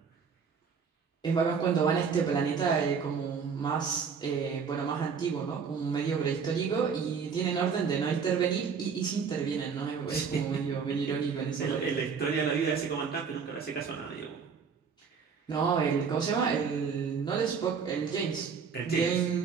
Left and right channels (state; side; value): quieter; left; 6.1 dB